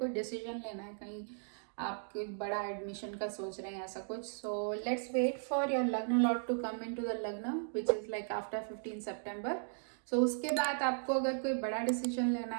डिसीजन लेना है, कहीं आप कोई बड़ा एडमिशन का सोच रहे हैं ऐसा कुछ, so let's wait for your लग्न lord to come in to the लग्न विच इज़ लाइक आफ्टर 15 सितंबर. सो उसके बाद आपको अगर कोई बड़ा डिसीजन लेना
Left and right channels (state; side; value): silent; left; digital silence